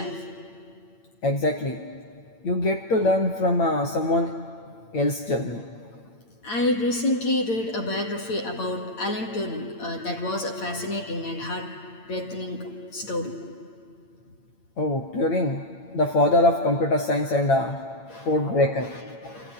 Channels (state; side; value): late; right; 8.8 ms